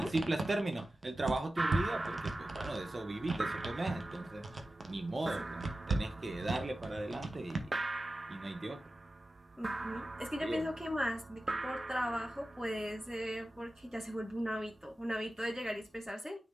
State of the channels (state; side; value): normal; both; correlation 0.94